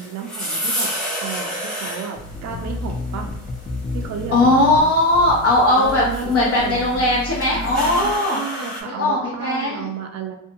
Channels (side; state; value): both; normal; correlation 0.11